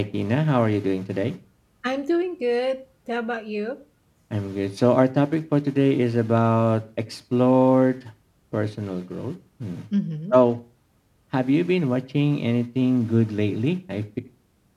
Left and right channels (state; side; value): identical; both; correlation 1.00